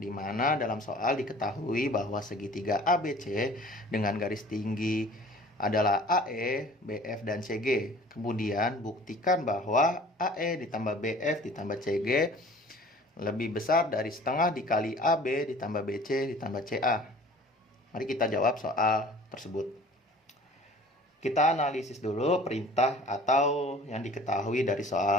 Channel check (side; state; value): both; normal; correlation 0.47